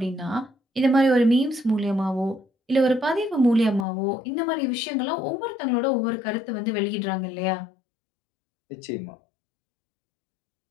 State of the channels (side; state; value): right; drops out; at 3.9 s